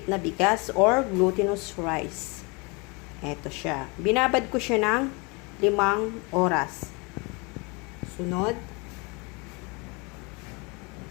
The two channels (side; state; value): right; quieter; 29.2 dB